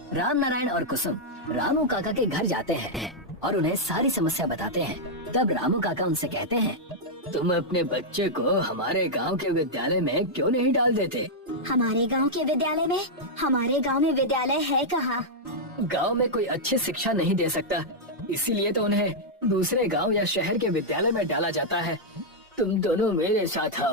राम नारायण और कुसुम रामू काका के घर जाते हैं और उन्हें सारी समस्या बताते हैं। तब रामू काका उनसे कहते हैं, तुम अपने बच्चे को हमारे गांव के विद्यालय में क्यों नहीं डाल देते? हमारे गांव के विद्यालय में? हमारे गांव में विद्यालय है कहाँ? गांव में कोई अच्छी शिक्षा नहीं दे सकता, इसीलिए तो उन्हें दूसरे गांव या शहर के विद्यालय में डाला जाता है। तुम दोनों मेरे साथ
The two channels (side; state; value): both; normal; correlation -0.05